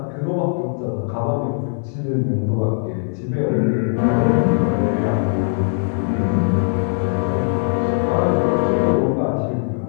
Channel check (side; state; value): right; silent; digital silence